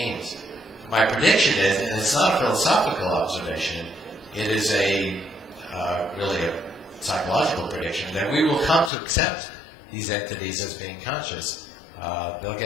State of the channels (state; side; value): drops out; right; at 8.9 s